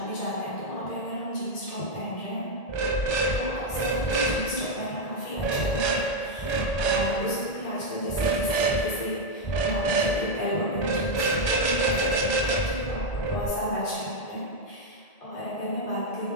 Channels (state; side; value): late; right; 1.8 ms